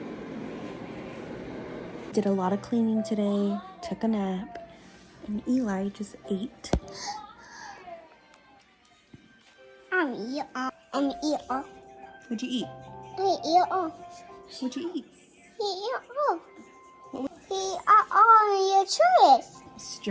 Did a lot of cleaning today, took a nap, and Eli just ate. I'm eat all. What'd you eat? I eat all. What'd you eat? He eat all. He eat all your choice.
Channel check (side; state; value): both; identical; correlation 1.00